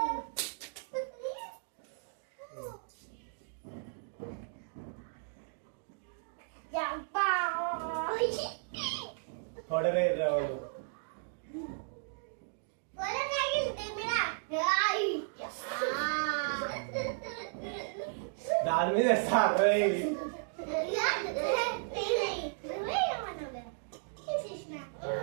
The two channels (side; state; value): left; silent; digital silence